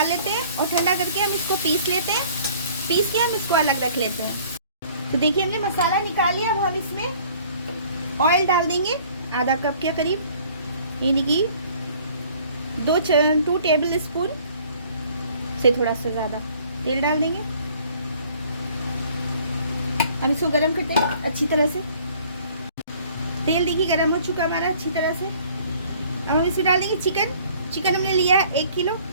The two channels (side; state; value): both; inverted; correlation -0.55